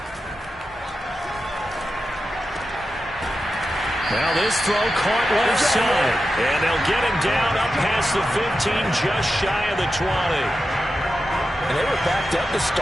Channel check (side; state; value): both; normal; correlation 0.91